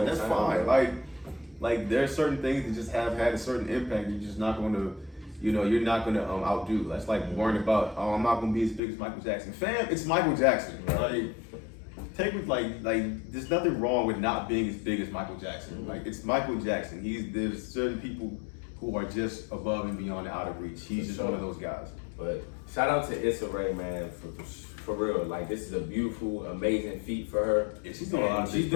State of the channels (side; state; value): right; drops out; at 8.8 s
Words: That's fine. Like, there are certain things that just have had a certain impact. You're just not going to, you're not going to outdo. That's like worrying about, I'm not going to be as big as Michael Jackson. Fam, it's Michael Jackson. Like, take with like there's nothing wrong with not being as big as Michael Jackson. Like, it's Michael Jackson. There's certain people who are just above and beyond and out of reach. He's just one of those guys. But shout out to Issa Rae, man, for real. Like, this is a beautiful, amazing feat for her. Yeah, she's doing a lot of She's big